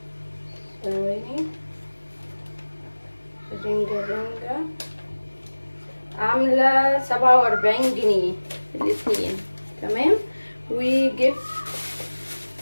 ثواني. رنجة عاملة 47 جنيه الاتنين. تمام. وجبت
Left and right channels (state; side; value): inverted; both; correlation -1.00